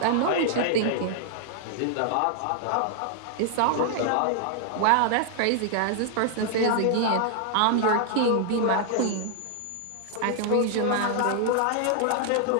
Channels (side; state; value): both; different; correlation -0.01